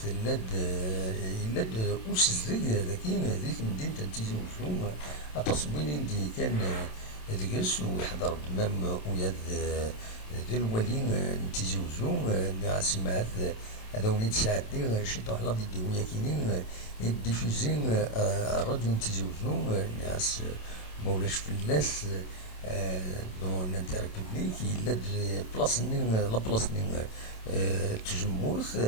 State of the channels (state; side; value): late; right; 27 ms